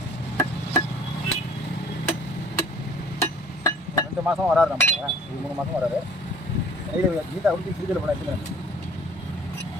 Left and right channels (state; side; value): normal; both; correlation 0.51